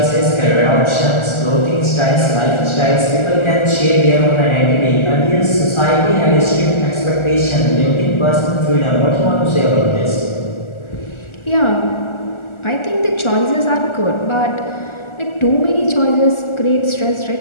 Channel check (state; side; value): late; right; 1.4 ms